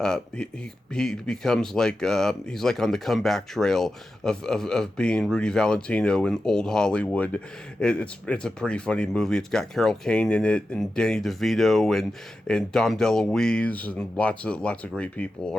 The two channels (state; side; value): normal; both; correlation 0.91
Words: he becomes like he's like on the comeback trail of being Rudy Valentino in old Hollywood. It's a pretty funny movie. It's got Carol Kane in it, and Danny DeVito, and Dom DeLuise, and lots of great people